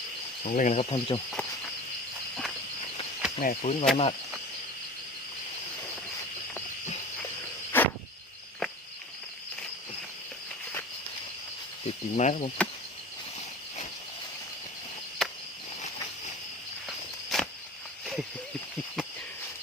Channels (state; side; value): normal; both; correlation 0.36